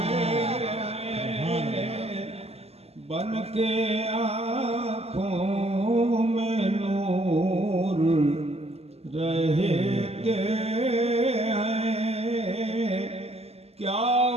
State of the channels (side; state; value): left; late; 0.29 ms